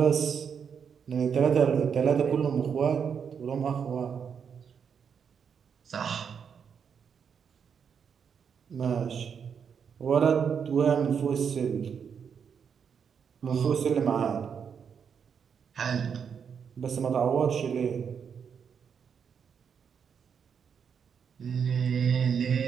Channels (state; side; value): quieter; left; 7.0 dB